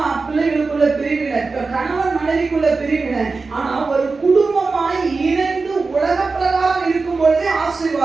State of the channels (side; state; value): left; quieter; 4.1 dB